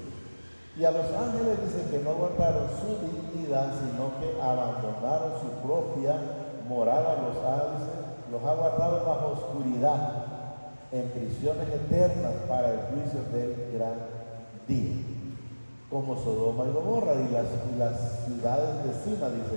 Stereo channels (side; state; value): both; inverted; correlation -1.00